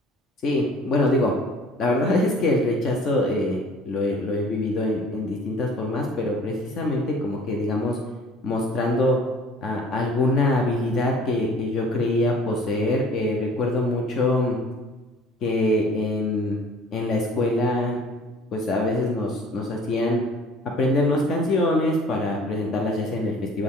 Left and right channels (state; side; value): normal; both; correlation 0.51